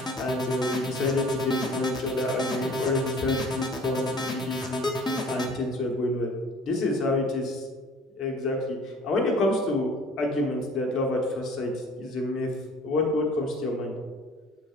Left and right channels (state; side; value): normal; both; correlation 0.49